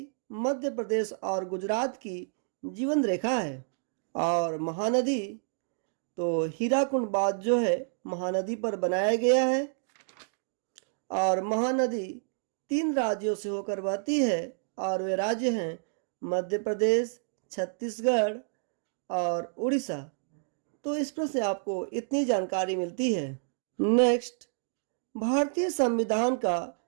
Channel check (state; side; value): silent; left; digital silence